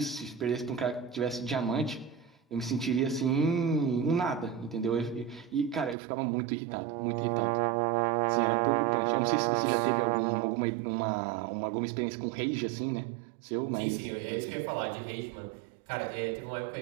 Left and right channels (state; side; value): drops out; left; at 6.0 s